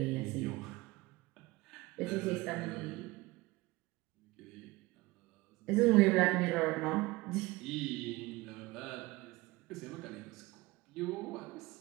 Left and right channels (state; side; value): quieter; left; 21.1 dB